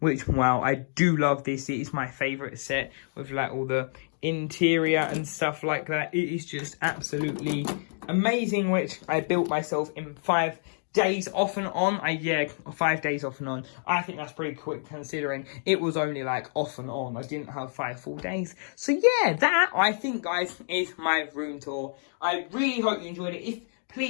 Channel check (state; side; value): silent; right; digital silence